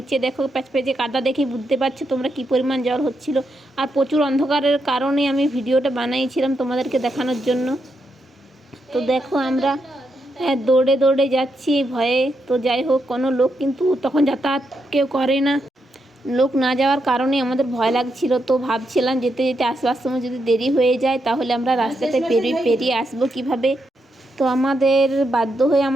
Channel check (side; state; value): both; normal; correlation 0.82